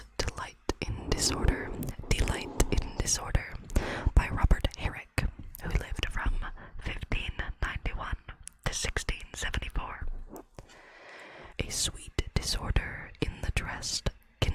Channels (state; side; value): identical; both; correlation 1.00